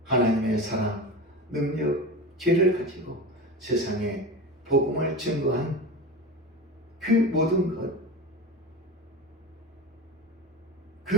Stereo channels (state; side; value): normal; both; correlation 0.28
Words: 하나님의 사랑, 능력, 지혜를 가지고 세상에 복음을 증거한 그 모든 것,